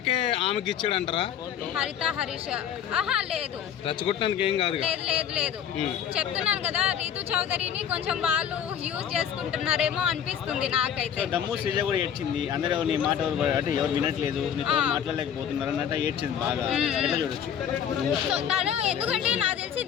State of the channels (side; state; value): right; quieter; 8.9 dB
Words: ఆమెకి ఇచ్చాడంటారా? హరిత హరీష్ లేదు, రెచ్చగొట్టినందుకు ఏం కాదు. లేదు చెప్తున్నాను కదా, రీతు చౌదరిని కొంచెం వాళ్ళు యూజ్ చేసుకుంటున్నారేమో అనిపిస్తుంది నాకైతే. దమ్ము శ్రీజ కూడా ఏడ్చింది, అందరూ నీ మాట అంటే ఎవరు వినట్లేదు, నీతో మాట్లాడలేకపోతున్నారు అన్నట్టు ఏడ్చింది బాగా. ఎట్లా చూడొచ్చు? సో తను ఎందుకంటే నాకు తెలిసి